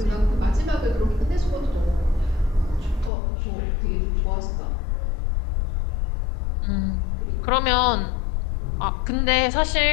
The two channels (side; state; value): right; drops out; at 3.1 s